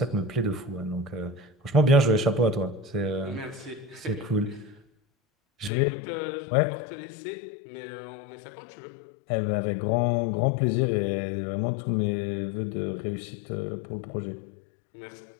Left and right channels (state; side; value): drops out; right; at 5.7 s